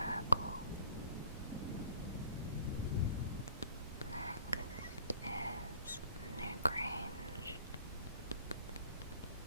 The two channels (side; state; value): both; inverted; correlation -0.55